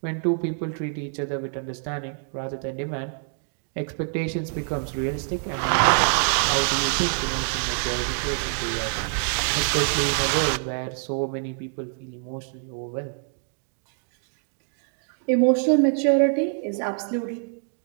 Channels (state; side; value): silent; left; 60 dB below the other